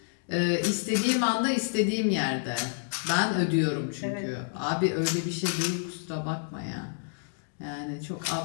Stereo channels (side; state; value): right; silent; digital silence